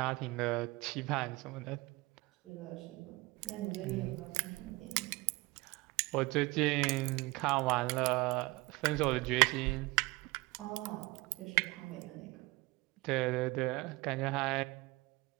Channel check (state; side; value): quieter; left; 23.3 dB